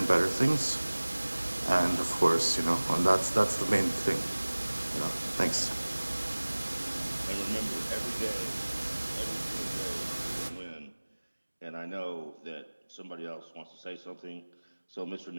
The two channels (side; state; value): both; inverted; correlation -1.00